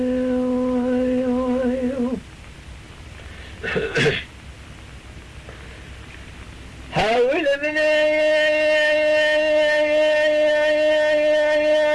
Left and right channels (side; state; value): both; identical; correlation 1.00